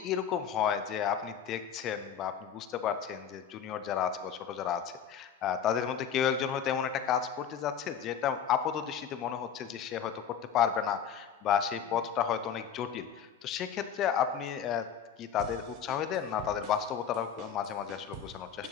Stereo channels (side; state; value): right; quieter; 8.0 dB